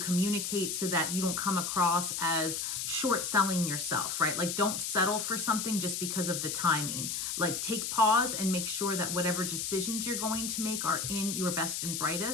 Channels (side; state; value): left; noise; hiss, 2 dB below the sound